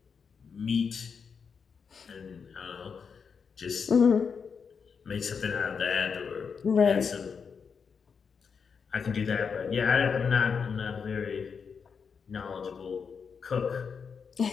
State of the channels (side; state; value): right; quieter; 6.0 dB